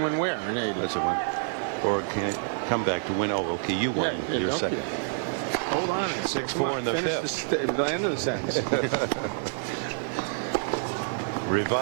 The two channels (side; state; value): left; silent; 60 dB below the other